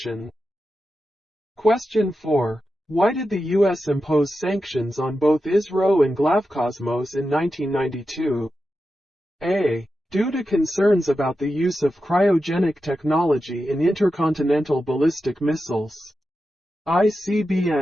Question 4. Why did the U.S. impose sanctions on both ISRO and Glaukosmos in 1992? A. Due to concerns about the use of cryogenic technology in intercontinental ballistic missiles,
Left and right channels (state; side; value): normal; both; correlation 0.90